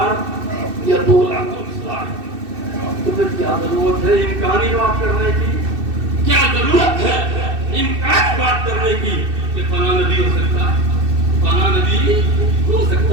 یا 2,24,000۔ تو پھر کیا ضرورت ہے امکانی بات کرنے کی، کیا ضرورت ہے امکانی بات کرنے کی کہ فلاں نبی ہو سکتا ہے، فلاں نبی ہو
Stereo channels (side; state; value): left; late; 2.6 ms